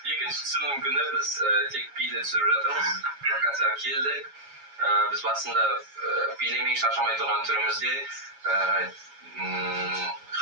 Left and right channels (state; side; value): late; left; 7.2 ms